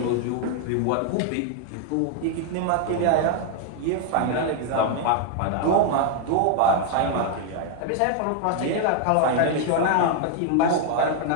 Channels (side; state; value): both; different; correlation 0.00